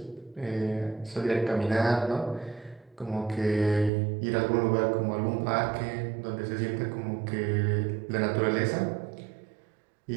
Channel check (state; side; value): drops out; left; at 3.9 s